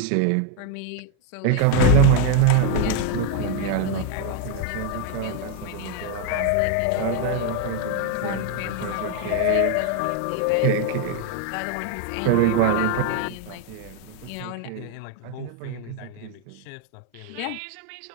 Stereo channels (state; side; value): different; both; correlation 0.01